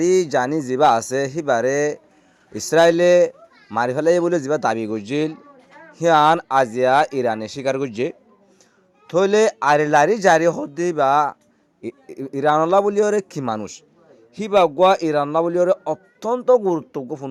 জানি যিবা আছে সিবারে ইসরায়েলে মারি ফেলাই বলে যিবা দাবি করছিল সিয়ান আজিয়া ইরানে স্বীকার করছে থইলে আলি লারি জারি হদ্দি বা ইরানলা বলি ওরে কি মানুষ সিবা গোয়া ইরানলা বলি ওরে অত্যন্ত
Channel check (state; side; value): identical; both; correlation 1.00